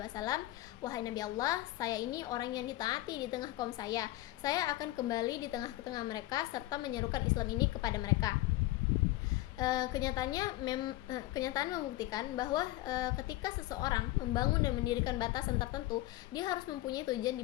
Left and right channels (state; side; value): quieter; right; 17.1 dB